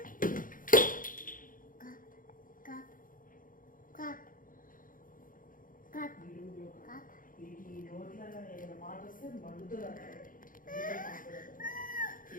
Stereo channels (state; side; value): late; right; 0.40 ms